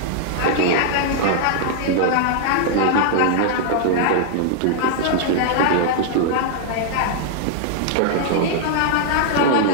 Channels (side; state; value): both; different; correlation -0.01